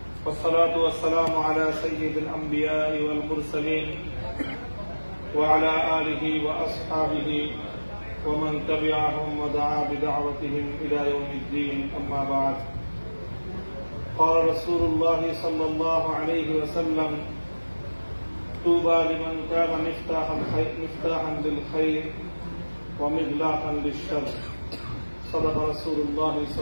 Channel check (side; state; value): both; inverted; correlation -1.00